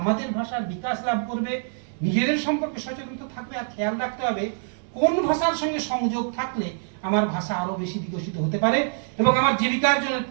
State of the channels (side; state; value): left; silent; 62 dB below the other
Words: ভাষার বিকাশ লাভ করবে, নিজেদের সম্পর্কে সচেতন থাকবে, আর খেয়াল রাখতে হবে কোন ভাষার সঙ্গে সংযোগ থাকলে আমার ভাষা আরো বেশি বিকশিত হতে পারে এবং আমার জীবিকার্জনের